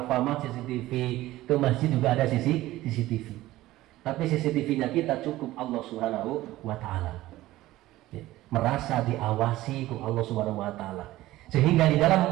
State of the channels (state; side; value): quieter; left; 16.5 dB